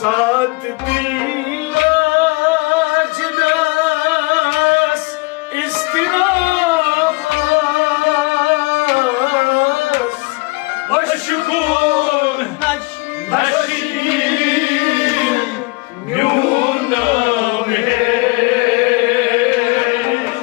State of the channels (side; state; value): right; quieter; 25.5 dB